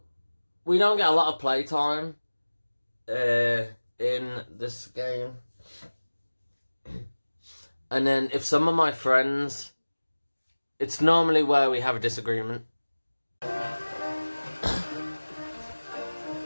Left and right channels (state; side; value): inverted; both; correlation -1.00